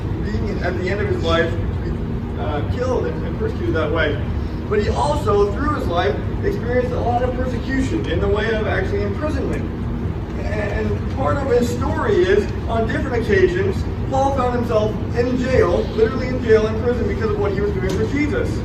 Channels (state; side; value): identical; both; correlation 1.00